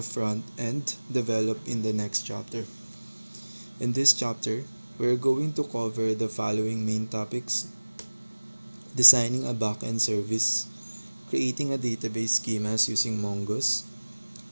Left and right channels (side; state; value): both; inverted; correlation -1.00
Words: front end developed in the next chapter. In this chapter, we are going to cover the following main topics: designing a backend service, creating a database schemas using Mongoose,